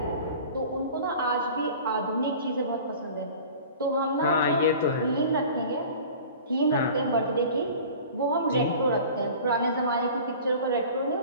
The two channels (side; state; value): both; inverted; correlation -0.41